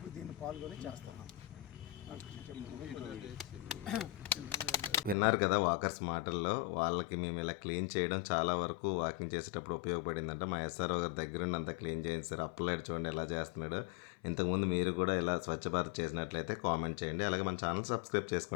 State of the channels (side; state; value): right; drops out; at 5.2 s